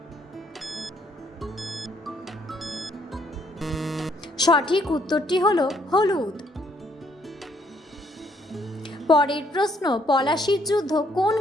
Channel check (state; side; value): normal; both; correlation 0.68